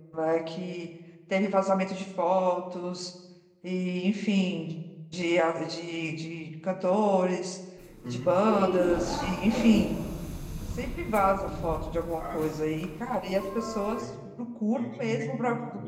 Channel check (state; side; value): identical; both; correlation 1.00